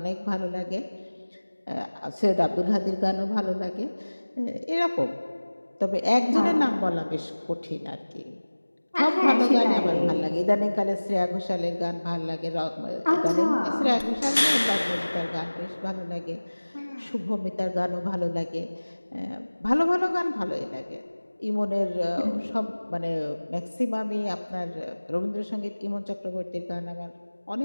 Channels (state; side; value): inverted; both; correlation -1.00